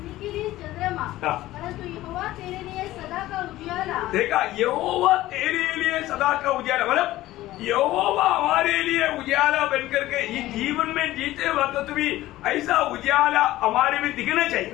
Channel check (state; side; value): quieter; right; 16.0 dB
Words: के लिए चंद्रमा, हाँ. परंतु यहोवा तेरे लिए सदा का उजियाला. देखा, यहोवा तेरे लिए सदा का उजाला. मतलब यहोवा हमारे लिए उजाला बनकर के ये जीवन में जीते वक्त भी ऐसा उजाला हमारे में दिखना